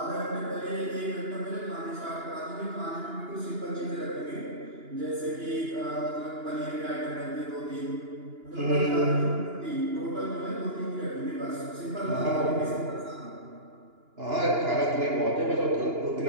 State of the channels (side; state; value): left; late; 2.9 ms